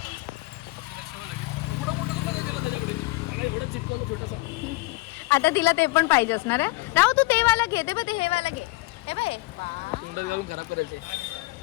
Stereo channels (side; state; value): right; quieter; 22.4 dB